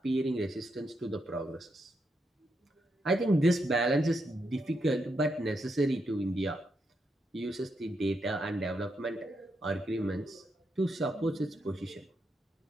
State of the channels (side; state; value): both; normal; correlation 0.82